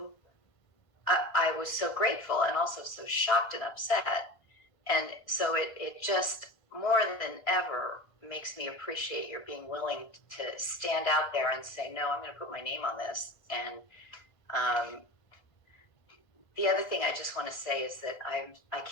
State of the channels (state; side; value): late; right; 1.5 ms